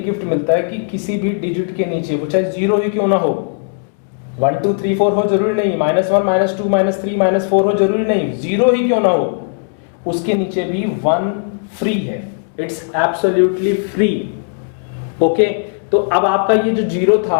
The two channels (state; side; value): silent; right; digital silence